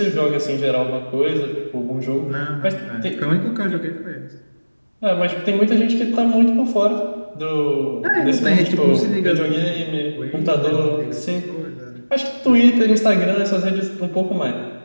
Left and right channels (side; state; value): both; inverted; correlation -1.00